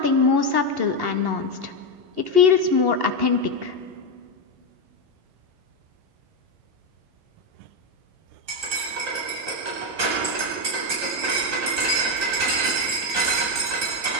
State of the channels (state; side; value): late; left; 11 ms